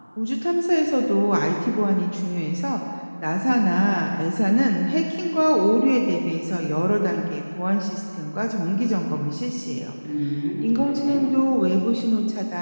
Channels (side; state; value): both; inverted; correlation -1.00